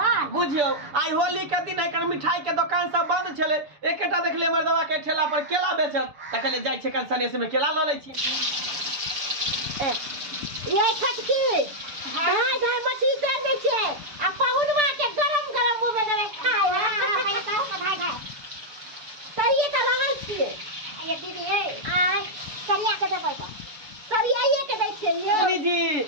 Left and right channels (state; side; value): late; left; 6.9 ms